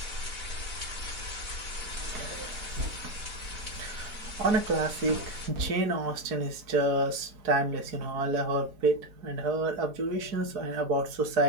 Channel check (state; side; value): late; left; 4.7 ms